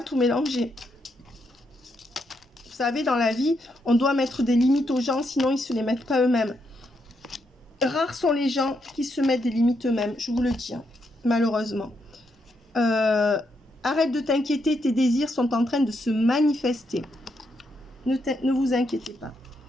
tout mélanger. Vous savez, dans la vie, on doit mettre des limites aux gens, sinon ils ne se les mettent pas eux-mêmes. Rares sont les gens qui se mettent des limites eux-mêmes, je vous le dis, hein, malheureusement. Arrête de t'inquiéter, tes désirs sont en train de se manifester. Ne vous inquiétez pas.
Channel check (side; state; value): both; normal; correlation 0.79